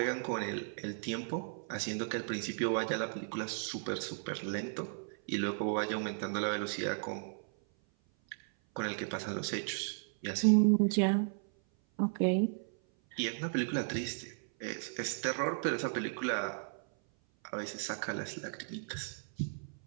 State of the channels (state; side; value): silent; left; 54 dB below the other